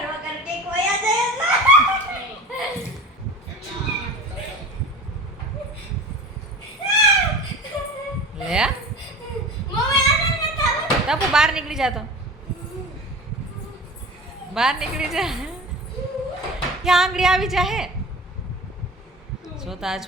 કર કે કોઈ આ જાય ટપુ બહાર નીકળી જા તો બહાર નીકળી જા ત્યાં આંગળી આવી જાહે જોતા આ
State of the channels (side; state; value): both; normal; correlation 0.36